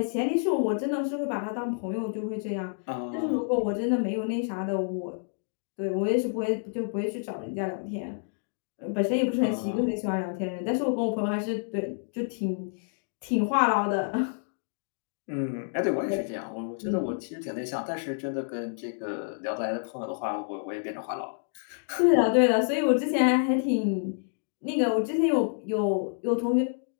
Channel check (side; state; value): right; silent; digital silence